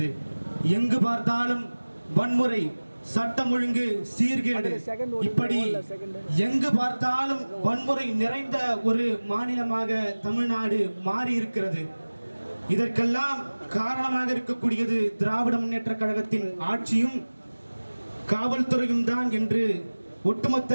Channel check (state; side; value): inverted; both; correlation -1.00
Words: எங்கு பார்த்தாலும் வன்முறை, சட்டம் ஒழுங்கு சீர்கேடு, இப்படி எங்கு பார்த்தாலும் வன்முறை நிறைந்த ஒரு மாநிலமாக தமிழ்நாடு மாறி இருக்கிறது. இதற்கெல்லாம் காரணமாக இருக்கக்கூடியது திராவிட முன்னேற்ற கழகத்தின் ஆட்சியும் காவல்துறையும் தான் என்று